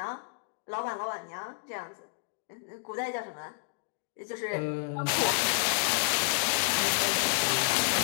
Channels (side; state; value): right; silent; digital silence